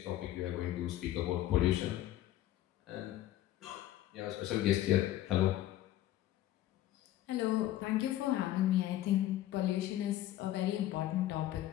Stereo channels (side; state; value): right; quieter; 13.8 dB